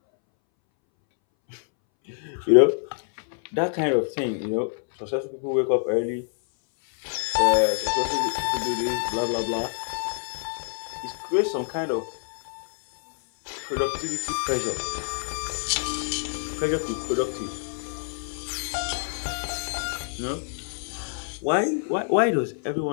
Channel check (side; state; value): right; silent; 61 dB below the other